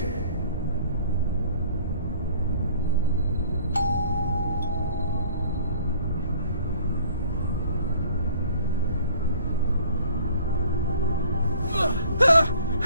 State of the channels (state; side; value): inverted; both; correlation -0.53